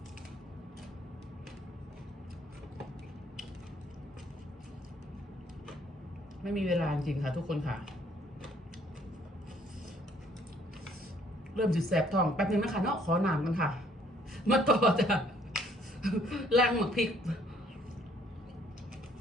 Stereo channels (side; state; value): both; normal; correlation 0.62